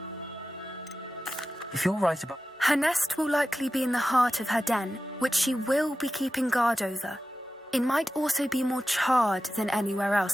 If you're right about... Her nest will likely be in the heart of her den, which she will be keeping guard over. It might also be more charred than anywhere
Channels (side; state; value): both; normal; correlation 0.94